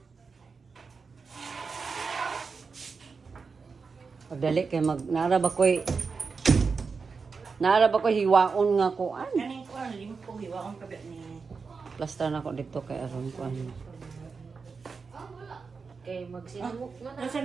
Pagdali kay naraba ko'y hiwaon nga kuan. Kaning ko ang limot ko hiwa ang kabi ni. Plaster na ko dito kay aron kuan. Okay, magsinamok na na. Nasaan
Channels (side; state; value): left; quieter; 5.0 dB